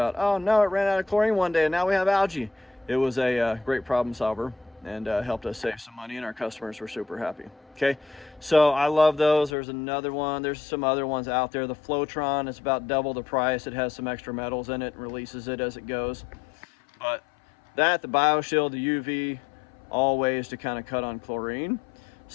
oh no, it ran out of chlorine one day and now we have algae. It was a great problem solver, and helped us save some money, and our customers were super happy. Okay, so I love those. There's another one. There's some other ones out there. The Flowtron is about double the price. It has some extra metals in it and releases it as it goes. But that, the BioShield, the UV, all ways to kind of cut on chlorine.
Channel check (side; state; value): right; drops out; at 9.6 s